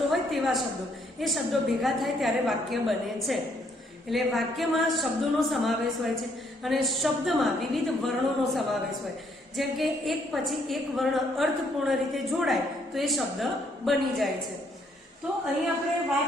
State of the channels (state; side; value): normal; both; correlation 0.69